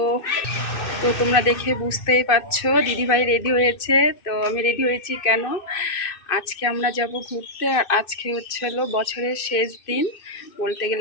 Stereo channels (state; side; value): late; right; 2.6 ms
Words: তো তোমরা দেখে বুঝতেই পারছো দিদিভাই রেডি হয়েছে। তো আমি রেডি হয়েছি কেন? আজকে আমরা যাব ঘুরতে, আর আজকে হলো বছরের শেষ দিন, বলতে